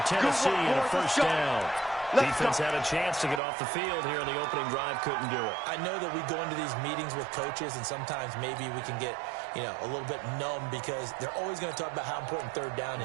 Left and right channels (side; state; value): left; drops out; at 3.4 s